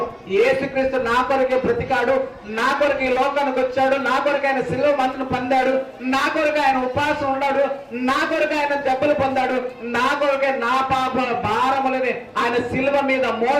యేసుక్రీస్తు నా కొరకే బ్రతికాడు, నా కొరకు ఈ లోకానికి వచ్చాడు, నా కొరకు ఆయన శిలువ మందును పొందాడు, నా కొరకు ఆయన ఉపవాసం ఉన్నాడు, నా కొరకు ఆయన దెబ్బలు పొందాడు, నా కొరకే నా పాప భారములని ఆయన శిలువ మీద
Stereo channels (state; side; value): identical; both; correlation 1.00